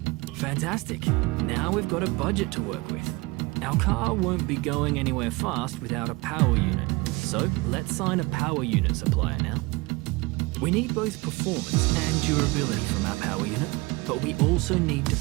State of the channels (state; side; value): quieter; left; 24.0 dB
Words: Fantastic. Now we've got a budget to work with. Our car won't be going anywhere fast without a power unit. So let's sign a power unit supplier now. We need both performance and durability from our power unit, but we also need to